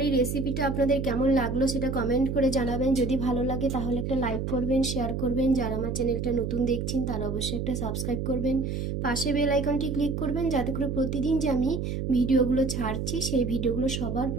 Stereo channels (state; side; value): noise; right; hum, 3 dB below the sound